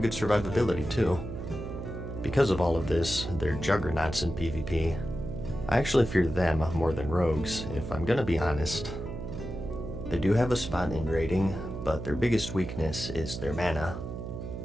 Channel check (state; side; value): noise; right; hum, 7 dB below the sound